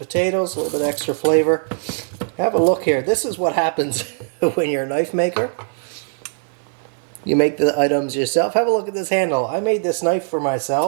a little bit extra flavor. Have a look here. This is what happens when you're a knife maker. You make the items yourself. Have a look at this handle. I made this knife for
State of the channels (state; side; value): silent; left; 56 dB below the other